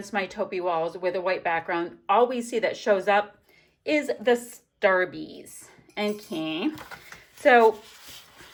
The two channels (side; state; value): both; identical; correlation 1.00